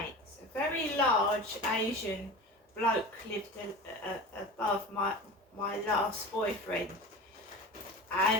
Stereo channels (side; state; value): both; normal; correlation 0.32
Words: A very large Asian bloke lived above my last boyfriend,